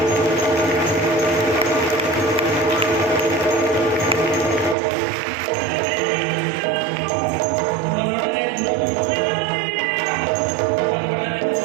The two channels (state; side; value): drops out; left; at 4.8 s